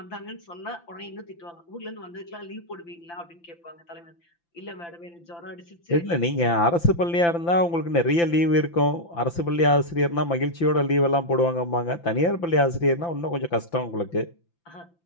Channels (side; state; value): right; late; 5.9 ms